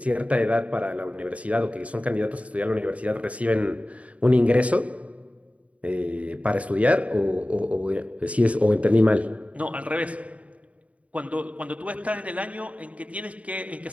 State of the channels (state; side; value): late; left; 0.066 ms